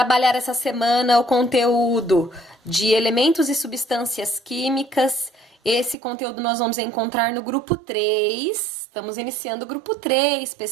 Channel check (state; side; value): drops out; left; at 6.0 s